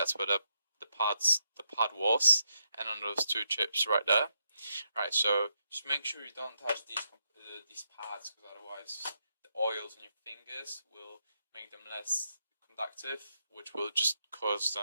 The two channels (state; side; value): inverted; both; correlation -0.81